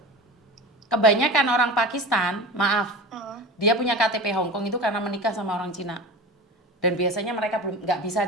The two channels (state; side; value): normal; both; correlation 0.31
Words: Kebanyakan orang Pakistan, maaf, dia punya KTP Hong Kong itu karena menikah sama orang Cina. Dan biasanya mereka belum